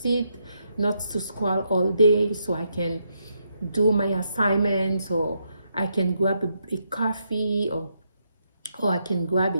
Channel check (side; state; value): both; inverted; correlation -0.79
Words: not to scroll all day, so I can do my assignments, or I can grab a coffee, or I can grab